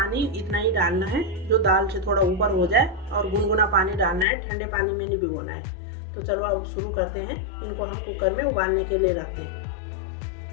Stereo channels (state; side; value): drops out; right; at 4.2 s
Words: इतना ही डालना है जो दाल से थोड़ा ऊपर हो जाए और गुनगुना पानी डालना है, ठंडे पानी में नहीं भिगोना है। तो चलो अब शुरू करते हैं। इनको हम कुकर में उबालने के लिए रखते